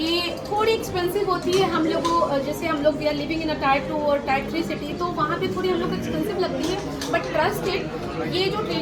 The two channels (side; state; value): both; identical; correlation 1.00